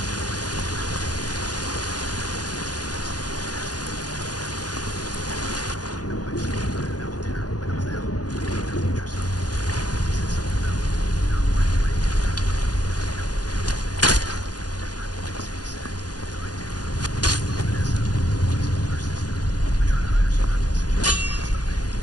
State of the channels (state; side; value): late; right; 0.69 ms